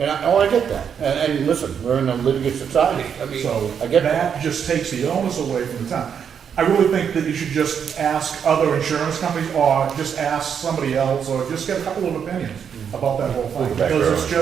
I get that. And listen, we're in a litigious society. I mean, So I get that. that just takes the onus away from the town. I really think that you should just ask other insurance companies, or just ask somebody else, or just get a couple of opinions about that whole thing. Because it's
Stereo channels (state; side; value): quieter; left; 7.6 dB